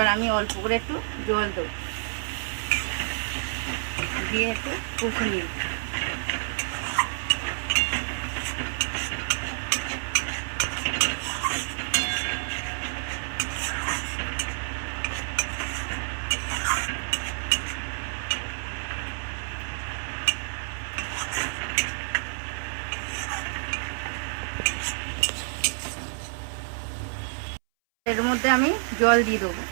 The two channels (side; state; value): left; silent; 59 dB below the other